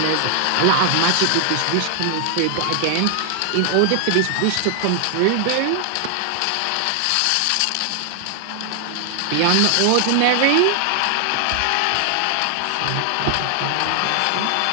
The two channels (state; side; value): different; both; correlation 0.00